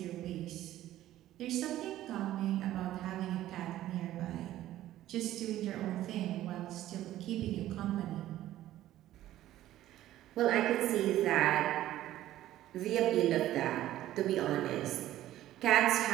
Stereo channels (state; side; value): quieter; left; 13.9 dB